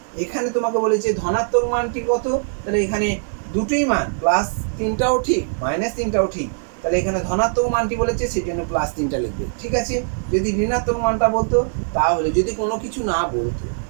এখানে তোমাকে বলেছে ধনাত্মক মানটি কত, তাহলে এখানে দুটোই মান, প্লাস 3টাও ঠিক মাইনাস 3টাও ঠিক, তাহলে এখানে ধনাত্মক মানটি বলেছে সেই জন্য প্লাস 3টা লিখবে। ঠিক আছে, যদি ঋণাত্মক মানটা বলতো, তাহলে যদি কোনো কিছু না বলতো,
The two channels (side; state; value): left; silent; digital silence